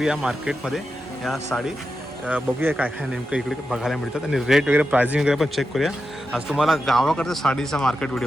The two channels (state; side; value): normal; both; correlation 0.90